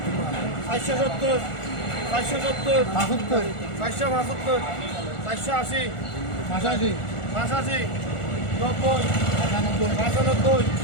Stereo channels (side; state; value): right; late; 1.4 ms